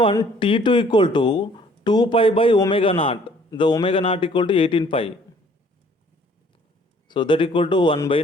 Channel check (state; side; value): normal; both; correlation 0.58